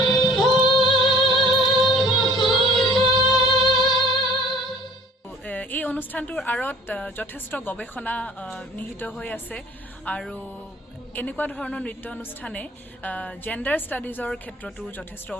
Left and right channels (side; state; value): both; normal; correlation 0.49